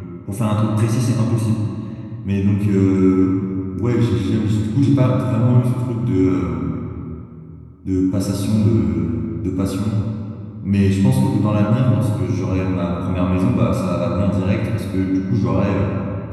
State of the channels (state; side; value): identical; both; correlation 1.00